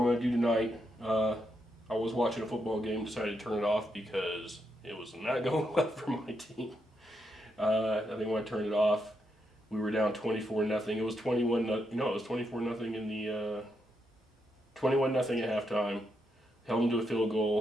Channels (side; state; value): both; normal; correlation 0.81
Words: going to do tonight. I was watching a football game, decided to turn it off because it was not going well for my team. I think when I turned it off, we were down 24-0. It was 21. It was 24-0 in the 21-0 at halftime. Held them to a field